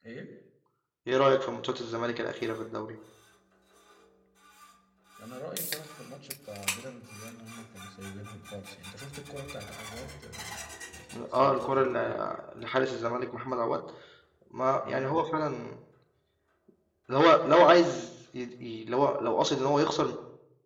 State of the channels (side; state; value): both; identical; correlation 1.00